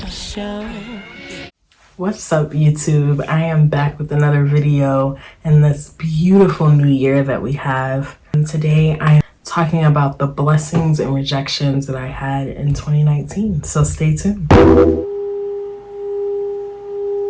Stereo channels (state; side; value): identical; both; correlation 1.00